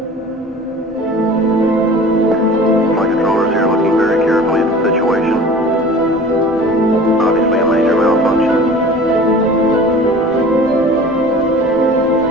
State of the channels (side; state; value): both; normal; correlation 0.42